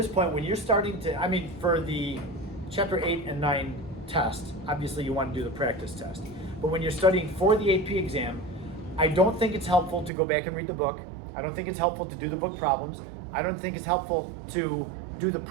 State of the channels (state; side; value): drops out; left; at 10.1 s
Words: point, when you're starting to, for the Chapter 8 and 9 test, obviously you want to do the practice test. But when you're studying for the AP exam, I don't think it's helpful to go back and read the book. I don't think it's helpful to do the book problems. I don't think it's helpful to do the